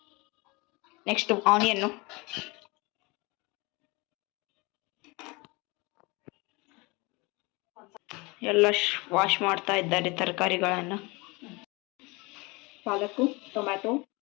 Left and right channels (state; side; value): quieter; right; 25.7 dB